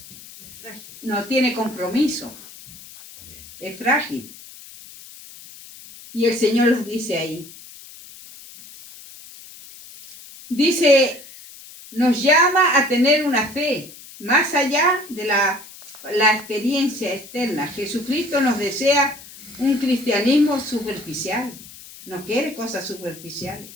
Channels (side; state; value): left; noise; hiss, 18 dB below the sound